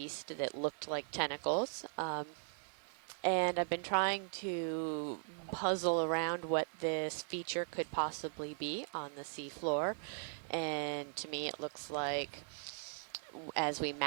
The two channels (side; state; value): left; silent; digital silence